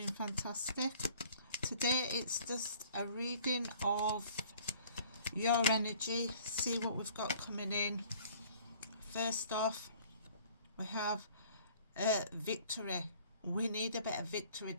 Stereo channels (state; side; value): inverted; both; correlation -0.53